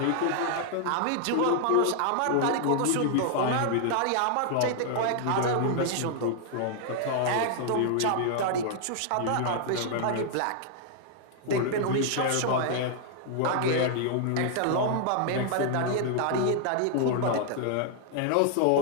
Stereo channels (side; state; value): both; different; correlation 0.00